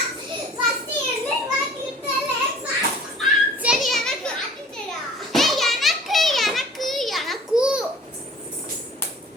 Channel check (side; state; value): both; normal; correlation 0.48